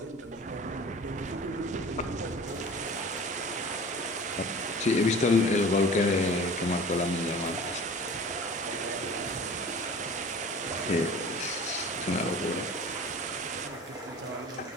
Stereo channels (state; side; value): normal; both; correlation 0.41